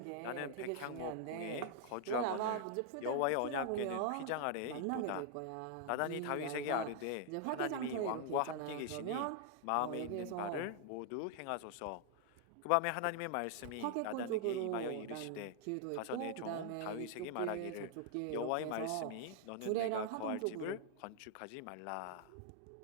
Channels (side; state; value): both; different; correlation 0.00